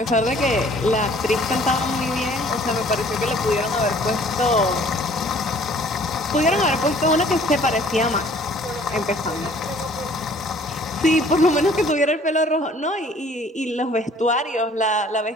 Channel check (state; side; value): normal; both; correlation 0.55